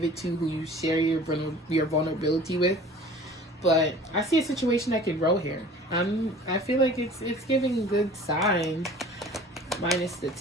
it to, who you share your vulnerability with. But I see a situation that could grow here. I feel like it's giving good sign, minus the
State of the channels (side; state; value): both; normal; correlation 0.45